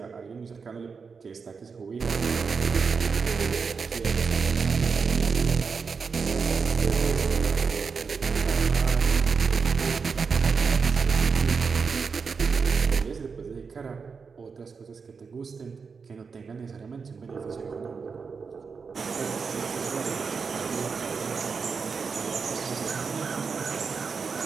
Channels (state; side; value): quieter; left; 5.3 dB